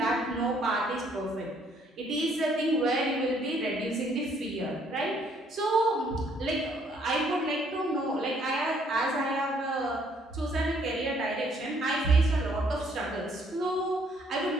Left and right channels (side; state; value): both; normal; correlation 0.65